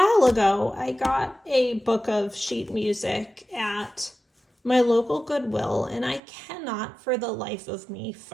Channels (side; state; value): left; drops out; at 6.2 s